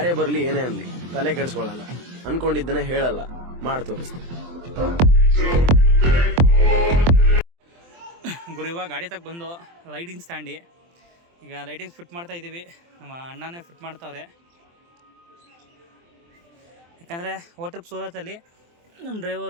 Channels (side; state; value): left; late; 23 ms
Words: ಬರಲಿ ಏನೇ ಅನ್ಲಿ ತಲೆ ಕೆಡಿಸ್ಕೊಳ್ಳಲ್ಲ, ಅನ್ಕೊಂಡಿದ್ದನ್ನೇ ಹೇಳಲ್ಲ, ಮಾಡಿ ತೋರಿಸ್ತೀನಿ. ಗುರು ಇವಾಗ ಗಾಡಿ ತಗ ಬಂದು ಲೈಟಿಂಗ್ ಸ್ಟ್ಯಾಂಡಿ ಈಗ ಲೈಟಿಂಗ್ಸ್ ಫಿಟ್ ಮಾಡ್ತಾ ಇದ್ದೀವಿ. ನಮ್ಮ ಅಣ್ಣನೇ ಫಿಟ್ ಮಾಡ್ತಾವ್ರೆ. ಯಾಕಂದರೆ ಟ್ರಿಪ್ ಸೂರತಲ್ಲಿ ನಮ್ಮ